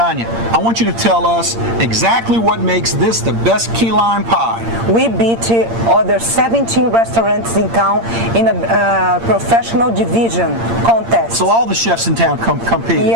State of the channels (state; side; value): late; left; 8.7 ms